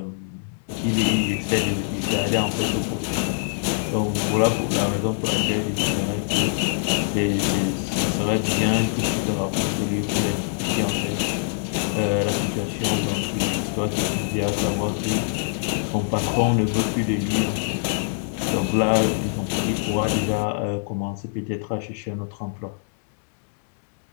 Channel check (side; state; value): right; silent; digital silence